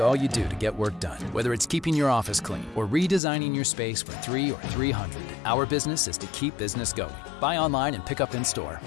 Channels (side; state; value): right; drops out; at 3.2 s